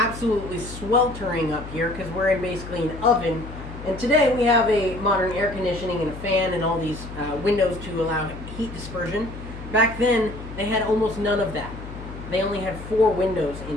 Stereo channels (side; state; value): left; noise; hum, 12 dB below the sound